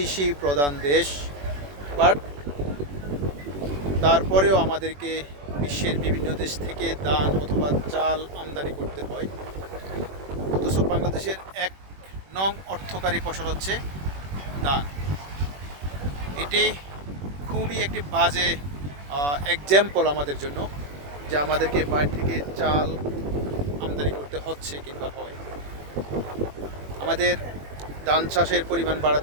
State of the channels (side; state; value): left; late; 21 ms